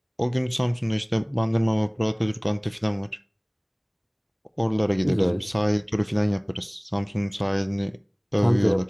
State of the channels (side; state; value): both; identical; correlation 1.00